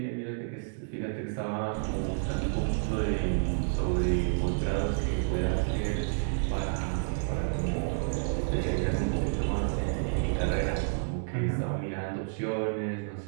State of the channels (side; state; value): left; silent; digital silence